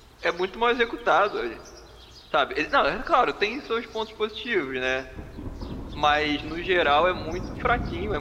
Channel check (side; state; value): both; identical; correlation 1.00